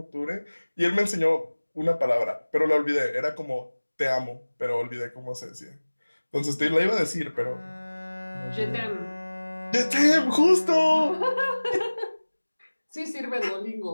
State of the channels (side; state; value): both; inverted; correlation -1.00